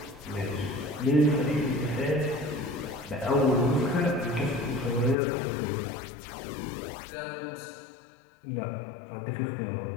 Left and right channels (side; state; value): right; drops out; at 5.2 s